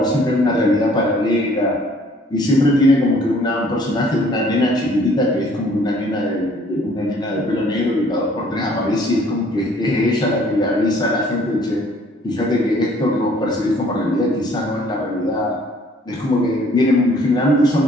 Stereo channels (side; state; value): both; normal; correlation 0.58